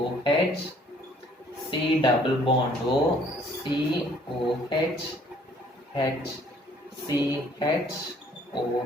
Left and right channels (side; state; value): both; normal; correlation 0.60